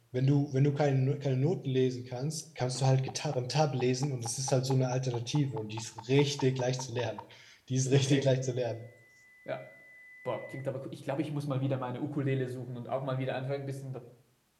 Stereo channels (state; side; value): identical; both; correlation 1.00